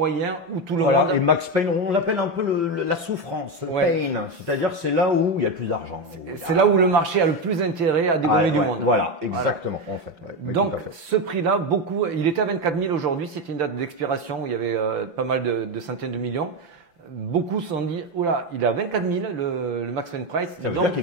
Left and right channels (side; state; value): left; late; 5.9 ms